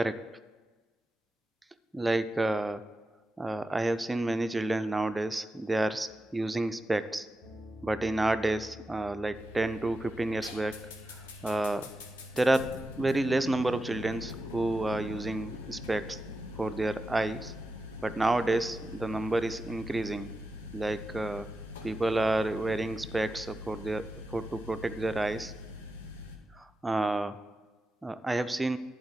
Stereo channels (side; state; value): both; normal; correlation 0.90